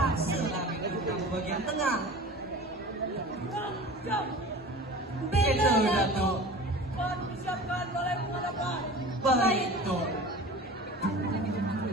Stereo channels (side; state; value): both; normal; correlation 0.38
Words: lah beta datang ke bagian tengah. Beta Datuk. Baik, Tok.